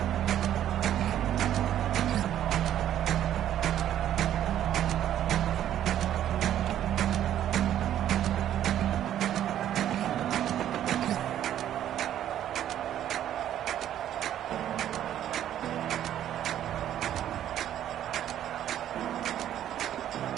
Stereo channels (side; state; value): left; quieter; 11.2 dB